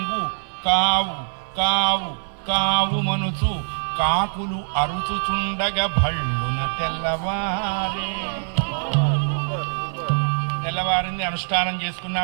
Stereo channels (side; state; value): left; silent; 60 dB below the other